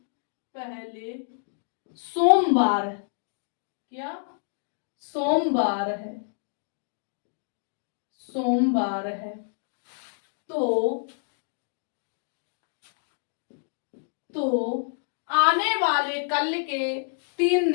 पहले सोमवार, क्या, सोमवार है, सोमवार है, तो आने वाले कल के 3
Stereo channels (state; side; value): silent; right; digital silence